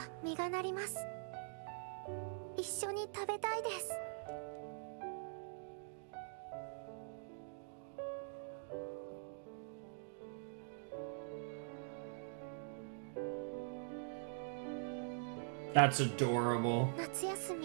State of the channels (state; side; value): silent; left; digital silence